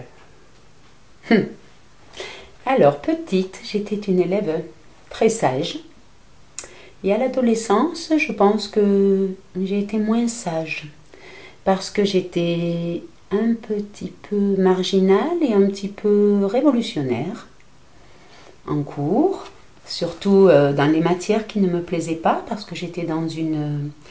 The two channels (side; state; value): both; identical; correlation 1.00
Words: Alors, petite, j'étais une élève très sage. Et à l'adolescence, je pense que j'ai été moins sage parce que j'étais un petit peu marginale et un petit peu révolutionnaire en cours, surtout dans les matières qui ne me plaisaient pas parce que je